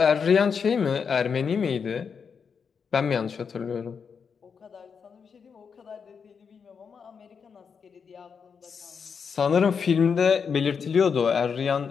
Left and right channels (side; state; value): right; quieter; 6.2 dB